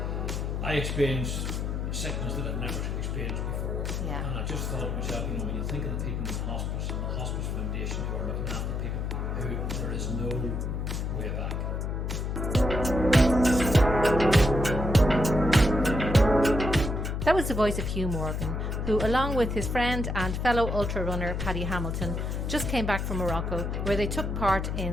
I experienced sickness that I'd never experienced before. Yeah. And I just thought to myself, when you think of the people in the hospice and the hospice foundation who are looking after people, who there is no way back. That was the voice of Hugh Morgan, who, along with his friend and fellow ultra runner Paddy Hamilton, just came back from Morocco, where they took part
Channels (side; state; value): left; noise; hum, 2 dB below the sound